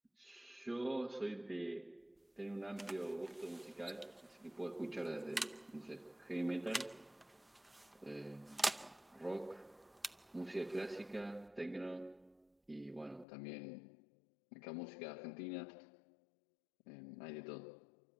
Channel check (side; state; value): right; drops out; at 13.2 s